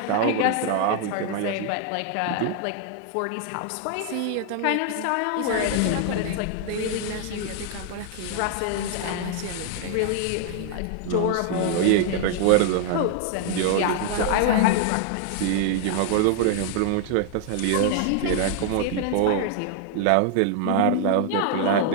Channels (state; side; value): different; both; correlation 0.00